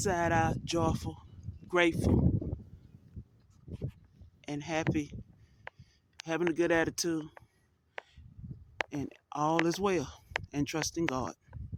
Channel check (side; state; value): both; identical; correlation 1.00